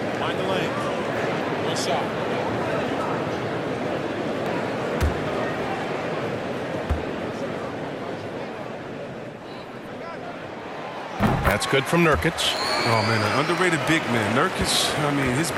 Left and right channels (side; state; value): both; identical; correlation 1.00